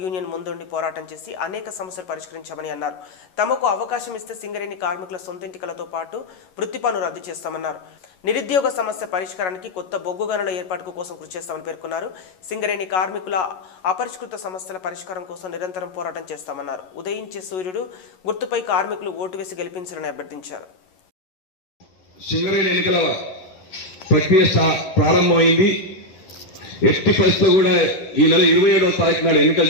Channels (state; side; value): late; right; 11 ms